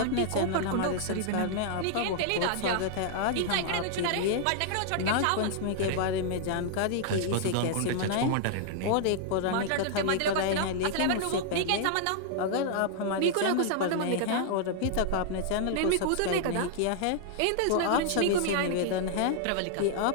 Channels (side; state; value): both; different; correlation -0.01